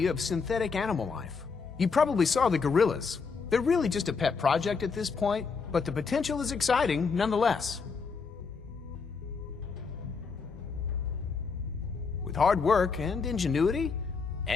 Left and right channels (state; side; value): quieter; right; 5.1 dB